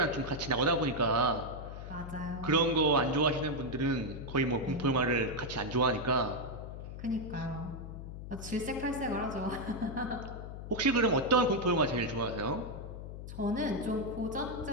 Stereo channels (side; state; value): left; noise; hum, 10 dB below the sound